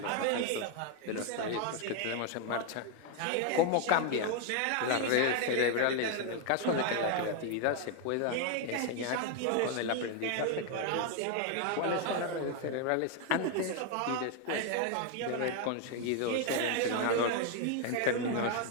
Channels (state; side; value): different; both; correlation 0.01